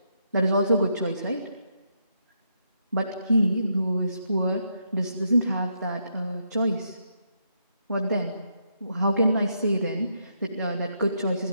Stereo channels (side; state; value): both; inverted; correlation -0.78